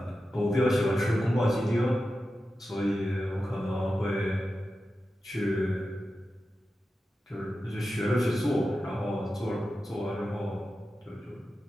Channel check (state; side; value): normal; both; correlation 0.92